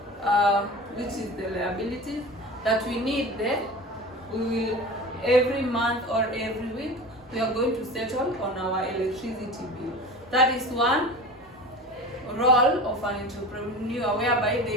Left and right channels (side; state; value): both; normal; correlation 0.33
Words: which is the liabilities that we need there. We will every month or every week we are going to settle on our electricity bill. That is one role of an entrepreneur, whereby